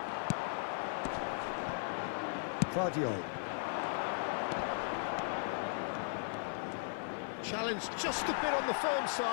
Guardiola. Challenged just a bit on the firm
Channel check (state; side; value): silent; right; 53 dB below the other